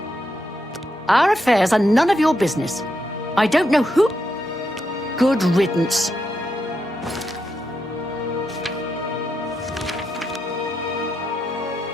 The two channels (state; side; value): normal; both; correlation 0.83